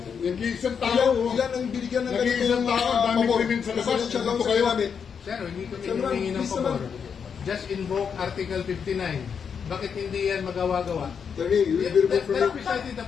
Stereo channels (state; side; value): quieter; right; 6.8 dB